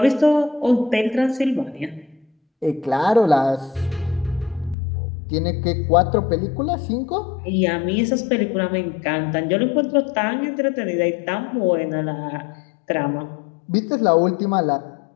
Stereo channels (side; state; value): right; drops out; at 4.8 s